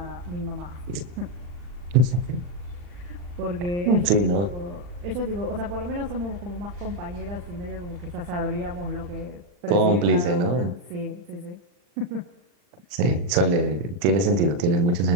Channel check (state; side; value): late; left; 40 ms